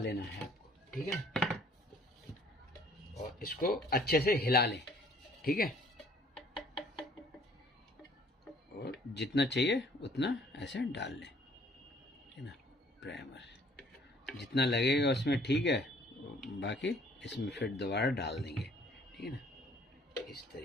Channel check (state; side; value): normal; both; correlation 0.58